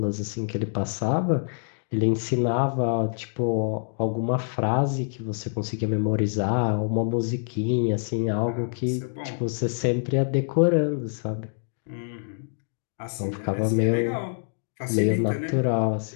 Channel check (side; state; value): right; silent; digital silence